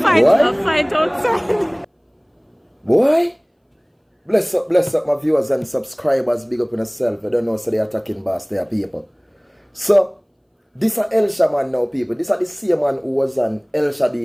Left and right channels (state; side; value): identical; both; correlation 1.00